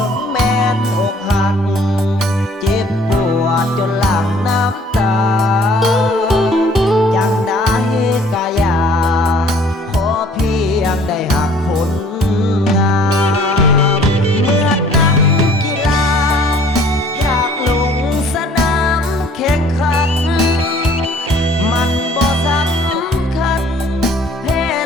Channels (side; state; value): both; normal; correlation 0.55